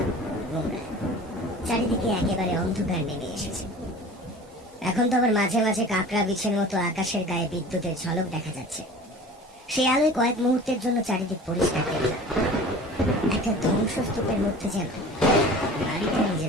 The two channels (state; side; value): normal; both; correlation 0.41